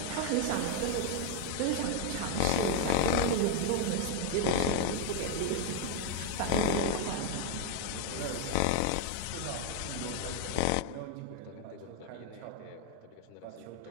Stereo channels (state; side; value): different; both; correlation 0.01